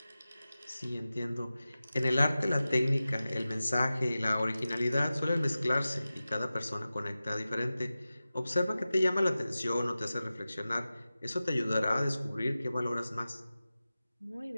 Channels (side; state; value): both; inverted; correlation -0.95